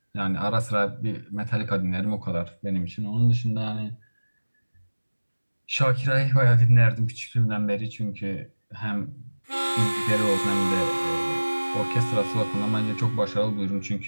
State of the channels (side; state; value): both; inverted; correlation -1.00